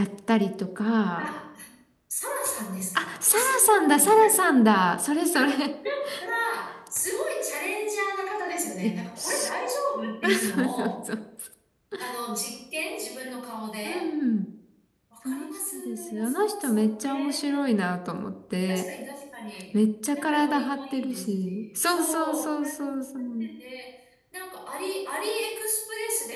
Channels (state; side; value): identical; both; correlation 1.00